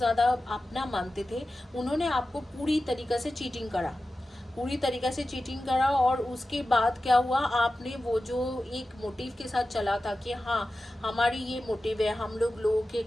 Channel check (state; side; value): normal; both; correlation 0.94